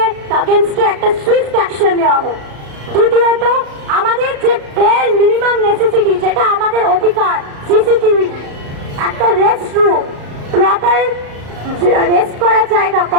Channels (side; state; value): left; late; 35 ms